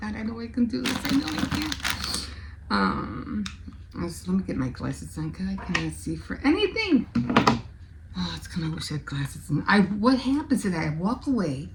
God, I know I can do this. I know I can. So let me get my glasses on, because I cannot see for anything. Oh, it's kind of wish I had glasses on. What happens is I walk away,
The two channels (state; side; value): identical; both; correlation 1.00